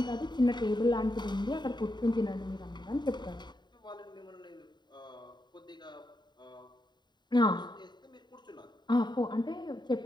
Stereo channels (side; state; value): right; late; 0.21 ms